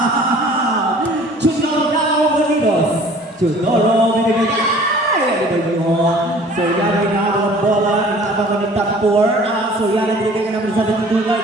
Chudoro Bonitos. Chudoro Bonitos. So yan ang inabang bola, inabang ko ng Tampor. So yan ang binigay namin sa ating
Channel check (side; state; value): both; normal; correlation 0.49